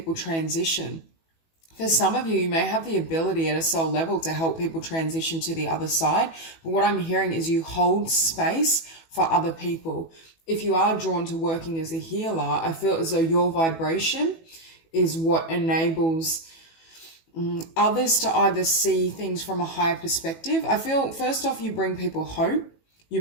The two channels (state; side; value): late; right; 18 ms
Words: transition. For some of you, you may have the ability at a soul level to help people transition to the other side. But what I'm hearing is you hold space for other people. If you are drawn to working as a healer, I feel as though your vibration is what enables others to either see things from a higher perspective. I feel, first off, you bring people hope. You